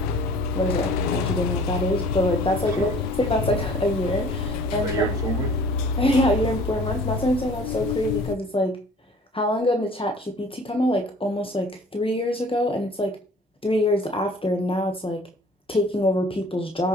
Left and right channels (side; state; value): both; normal; correlation 0.50